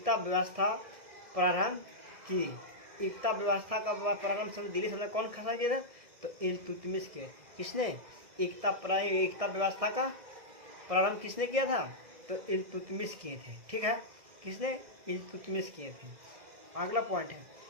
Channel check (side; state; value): left; late; 2.0 ms